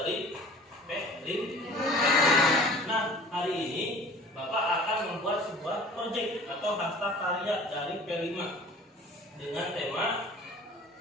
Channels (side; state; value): both; normal; correlation 0.45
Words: P5. Nah, hari ini Bapak akan membuat sebuah proyek atau hasta karya dari P5 dengan tema